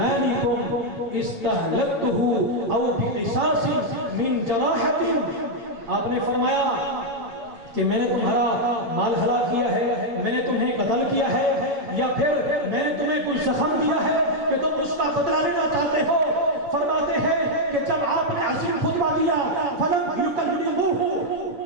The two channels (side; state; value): left; late; 7.0 ms